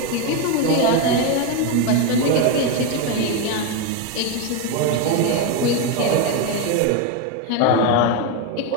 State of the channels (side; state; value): both; different; correlation 0.03